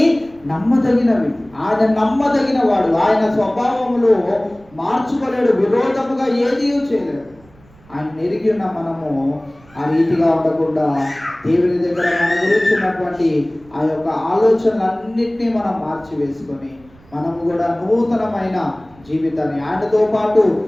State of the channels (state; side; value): noise; right; rumble, 27 dB below the sound